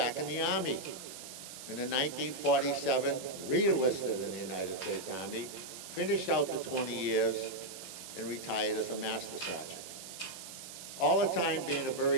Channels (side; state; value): right; noise; hiss, 12 dB below the sound